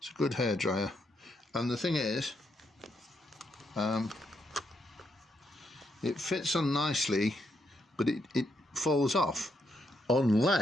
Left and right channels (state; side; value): normal; both; correlation 0.79